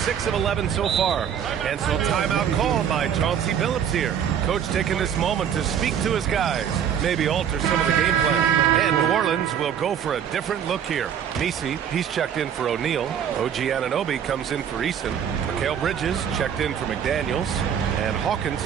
of 11 so far. And so timeout called by Chauncey Billups here. Coach taking this moment to speak to his guys. Maybe alter some of the game plan. And New Orleans will go for a different look here. Messi, he's checked in for O'Neal. OG Anunoby comes in for Eason. Mikal Bridges checked in for McDaniels. And Hawkins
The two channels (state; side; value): quieter; left; 8.6 dB